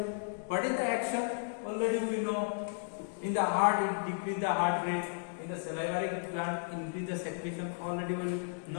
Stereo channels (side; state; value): right; silent; digital silence